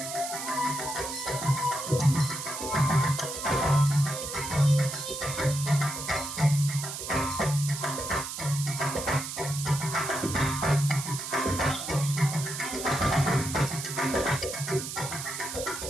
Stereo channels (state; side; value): noise; right; hiss, 7 dB below the sound